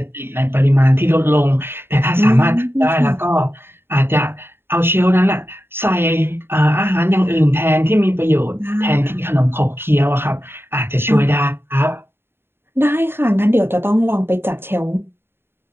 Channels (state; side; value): late; left; 0.11 ms